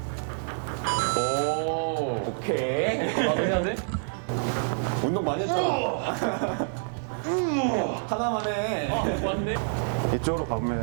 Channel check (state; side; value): silent; left; digital silence